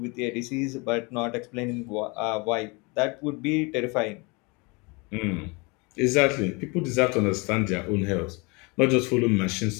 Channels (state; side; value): quieter; right; 28.5 dB